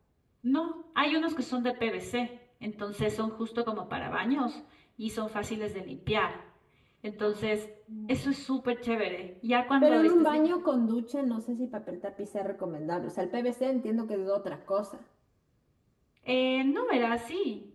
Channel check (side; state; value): both; identical; correlation 1.00